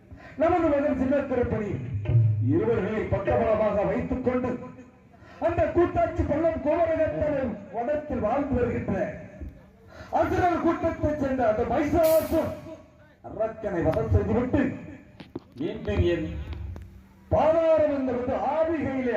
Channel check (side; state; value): both; identical; correlation 1.00